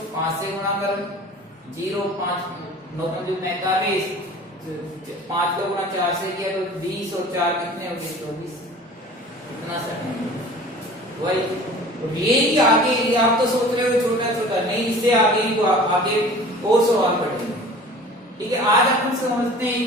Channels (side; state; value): both; normal; correlation 0.43